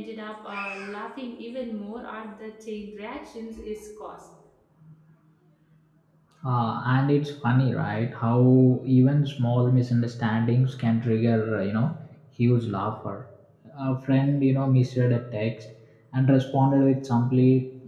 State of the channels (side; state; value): both; identical; correlation 1.00